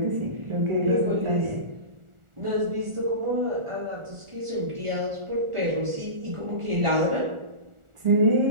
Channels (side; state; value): left; late; 1.4 ms